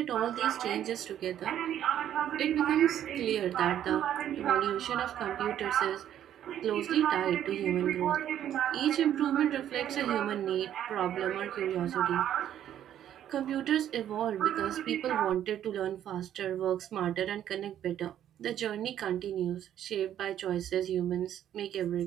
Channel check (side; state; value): left; quieter; 10.8 dB